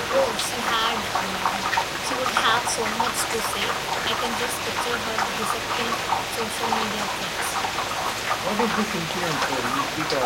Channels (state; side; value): identical; both; correlation 1.00